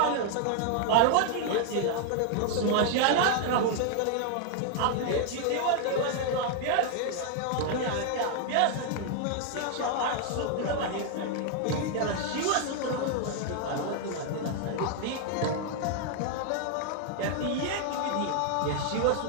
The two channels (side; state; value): both; different; correlation 0.00